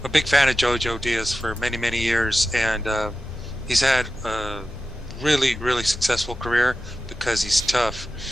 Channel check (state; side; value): normal; both; correlation 0.93